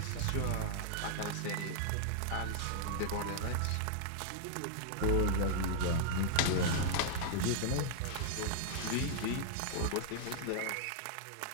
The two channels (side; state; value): both; different; correlation -0.01